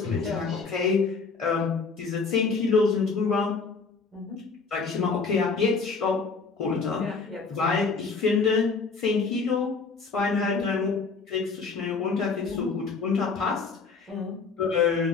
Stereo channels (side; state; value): right; quieter; 4.7 dB